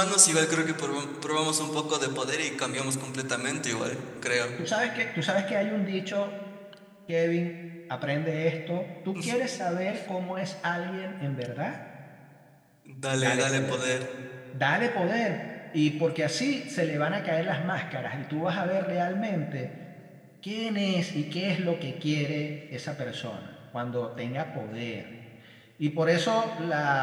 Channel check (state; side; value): identical; both; correlation 1.00